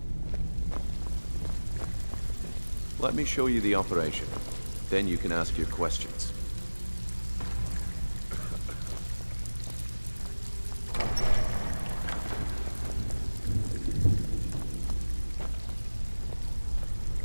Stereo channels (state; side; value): inverted; both; correlation -1.00